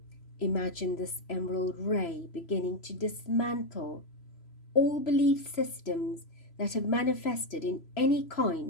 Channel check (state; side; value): late; right; 3.0 ms